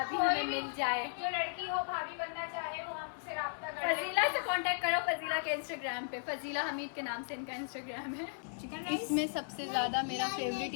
हमें मिल जाए। जो लड़की हो भाभी बनना चाहे वो हमसे राब्ता करे। फजीला से कांटेक्ट करो, फजीला के इंस्टाग्राम पे, फजीला हमीद के नाम से इनका इंस्टाग्राम है। इसमें सबसे ज़्यादा मेरा फेवरेट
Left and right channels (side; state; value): right; silent; 54 dB below the other